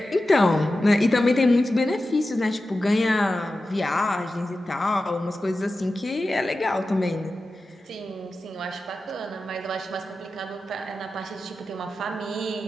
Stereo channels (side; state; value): both; normal; correlation 0.93